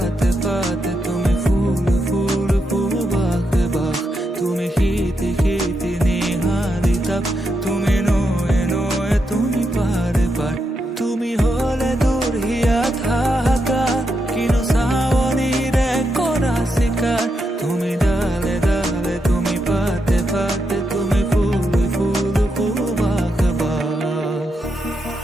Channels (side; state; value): both; normal; correlation 0.84